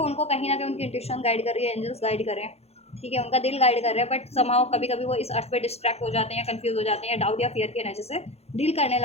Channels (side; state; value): right; late; 0.30 ms